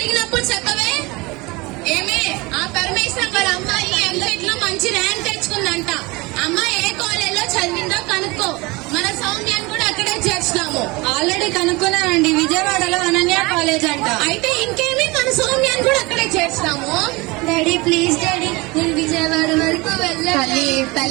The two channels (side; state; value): left; quieter; 24.2 dB